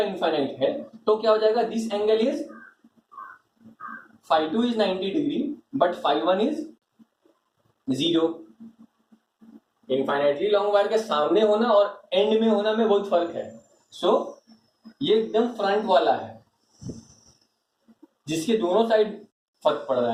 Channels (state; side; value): identical; both; correlation 1.00